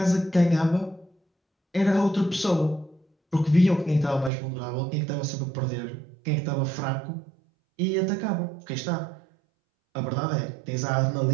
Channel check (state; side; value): drops out; left; at 4.3 s